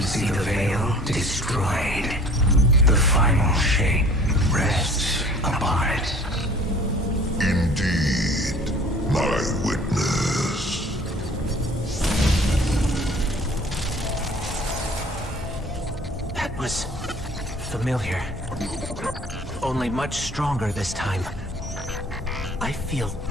see the Veil destroyed. The final shape rests upon it. Indeed, my witness. That was familiar. Only much stronger this time. I feel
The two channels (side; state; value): both; normal; correlation 0.49